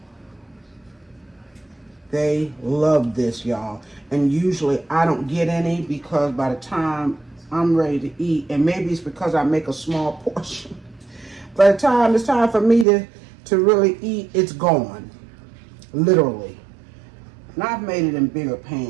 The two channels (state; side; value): drops out; left; at 12.9 s